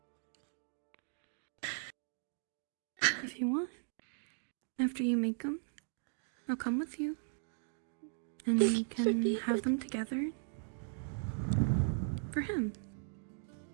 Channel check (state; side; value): silent; left; digital silence